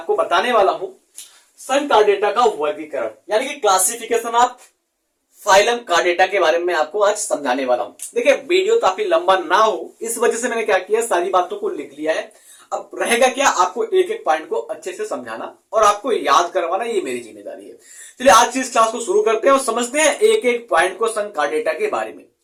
बताने वाला हूं संकार्डेटा का वर्गीकरण यानी कि क्लासिफिकेशन ऑफ फाइलम कार्डेटा के बारे में आपको आज समझाने वाला हूं। देखिए, वीडियो काफी लंबा ना हो इस वजह से मैंने क्या किया, सारी बातों को लिख लिया है। अब रहेगा क्या, आपको एक एक पॉइंट को अच्छे से समझाना और आपको याद करवाना, ये मेरी जिम्मेदारी है। चलिए आज की इस क्लास को शुरू करते हैं और समझते हैं एक एक पॉइंट को संकार्डेटा के बारे में।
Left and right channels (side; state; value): both; identical; correlation 1.00